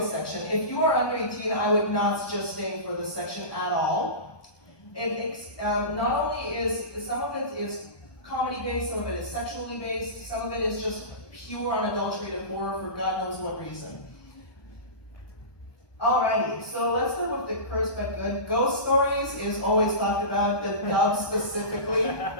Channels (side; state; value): right; late; 1.2 ms